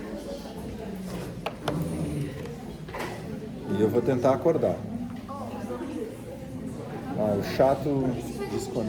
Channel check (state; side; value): identical; both; correlation 1.00